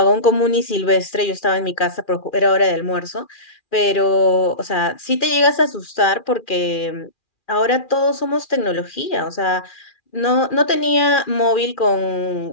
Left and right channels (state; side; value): late; right; 2.4 ms